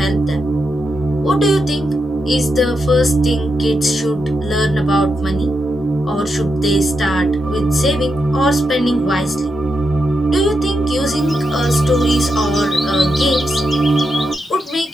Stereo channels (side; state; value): both; normal; correlation 0.85